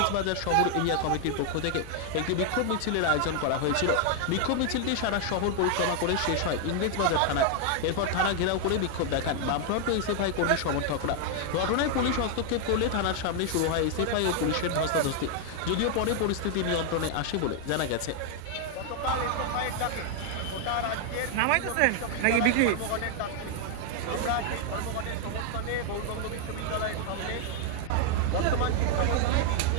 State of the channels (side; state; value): both; different; correlation 0.00